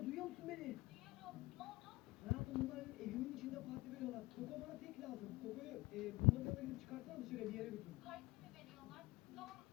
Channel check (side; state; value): right; quieter; 21.4 dB